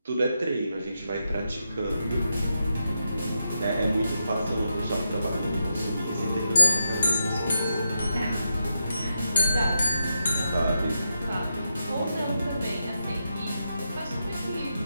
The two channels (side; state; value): both; inverted; correlation -0.85